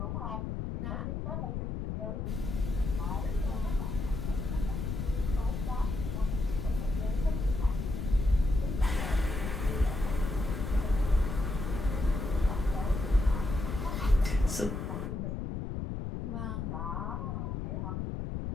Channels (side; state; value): left; noise; rumble, 3 dB below the sound